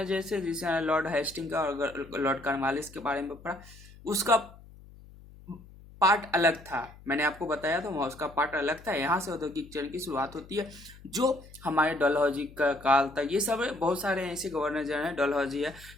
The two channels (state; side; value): noise; left; hum, 21 dB below the sound